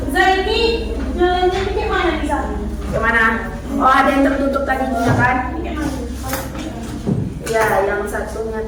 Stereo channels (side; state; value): both; identical; correlation 1.00